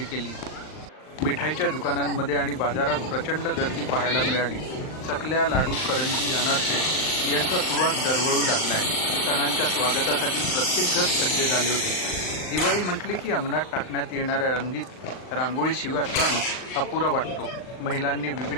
केली। मिठाईच्या दुकानांमध्ये आणि बाजारात प्रचंड गर्दी पाहायला मिळाली। चकल्या, लाडू, करंजी, अनारसे यांचा सुवास दरवळू लागला आहे। सणांच्या स्वागतासाठी प्रत्येक घर सज्ज झाले होते। दिवाळी म्हटले की अंगणात टाकण्यात येणाऱ्या रंगीत रांगोळीशिवाय सण अपुरा वाटतो। महिलांनी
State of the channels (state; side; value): late; right; 39 ms